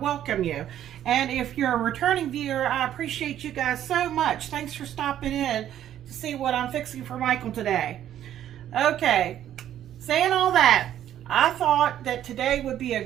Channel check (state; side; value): quieter; left; 11.2 dB